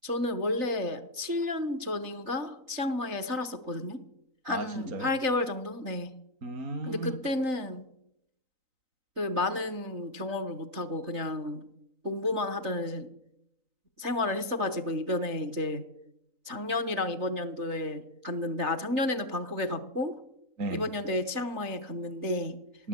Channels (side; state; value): left; late; 3.9 ms